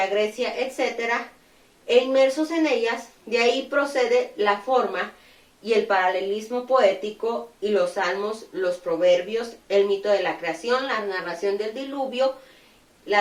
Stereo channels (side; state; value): both; identical; correlation 1.00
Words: Grecia, etc., e inmersos en ellas. De ahí procede la forma y el paralelismo poético y los salmos, los proverbios, el mito de la creación, la narración del diluvio,